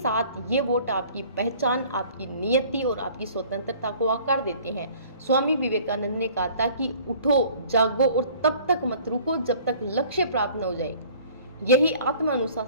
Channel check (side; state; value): both; inverted; correlation -0.51